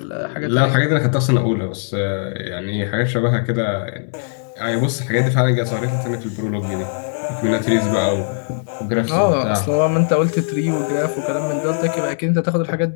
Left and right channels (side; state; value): right; silent; 66 dB below the other